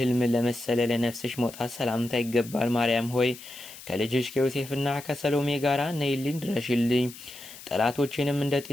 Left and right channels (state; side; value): noise; left; hiss, 16 dB below the sound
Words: ለመሰለ ለነፍስሽ መውጣት ሰላምታ ይገባል። ማርያም ሆይ ከልጅሽ ከዮሴፍና ከሰሎሜ ጋር ነይልኝ ድረሽልኝ። ጠላቶችንም እንደ